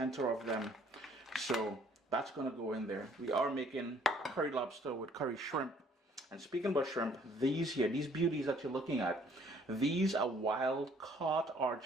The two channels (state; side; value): normal; both; correlation 0.60